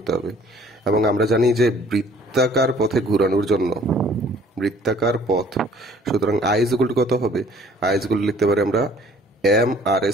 হবে। এবং আমরা জানি যে বৃত্তাকার পথে ঘোরানোর জন্য বৃত্তাকার পথ, সুতরাং আই ইজ ইকুয়াল টু কত হবে? আই ইজ ইকুয়াল টু লিখতে পারি আমরা M R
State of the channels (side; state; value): both; normal; correlation 0.55